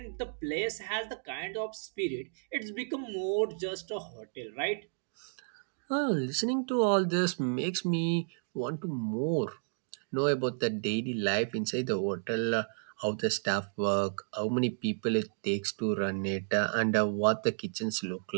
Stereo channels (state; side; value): silent; left; digital silence